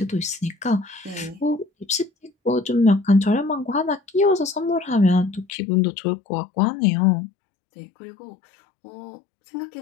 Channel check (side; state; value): right; drops out; at 5.5 s